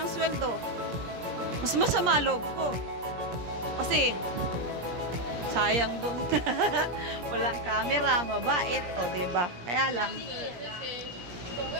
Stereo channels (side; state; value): left; late; 17 ms